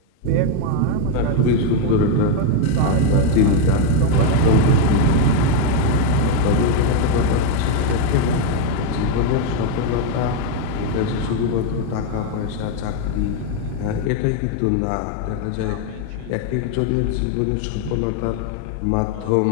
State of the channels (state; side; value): different; both; correlation 0.01